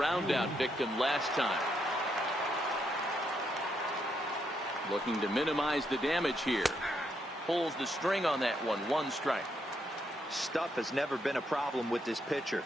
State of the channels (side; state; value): both; normal; correlation 0.78